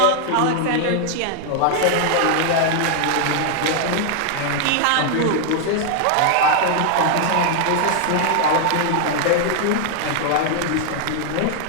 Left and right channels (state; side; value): different; both; correlation 0.00